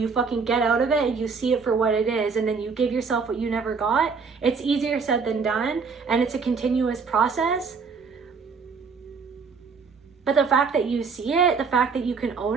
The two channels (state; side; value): quieter; left; 5.1 dB